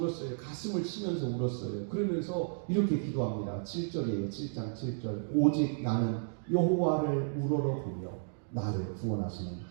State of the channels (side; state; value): left; silent; digital silence